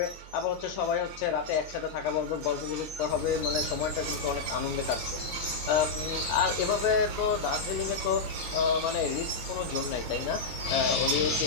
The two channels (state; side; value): quieter; right; 4.6 dB